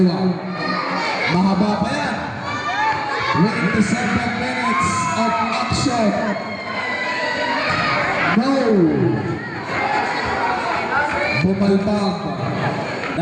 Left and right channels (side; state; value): both; identical; correlation 1.00